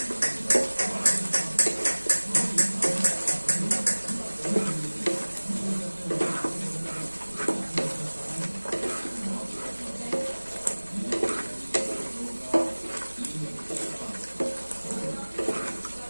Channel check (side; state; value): both; inverted; correlation -1.00